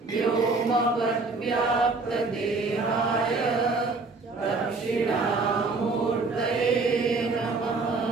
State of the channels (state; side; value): quieter; left; 3.8 dB